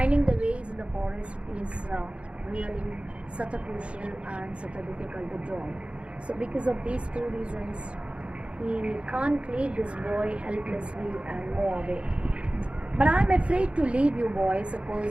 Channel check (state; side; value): late; left; 0.060 ms